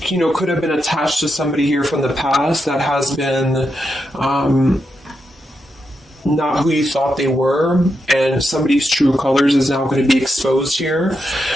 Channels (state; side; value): normal; both; correlation 0.85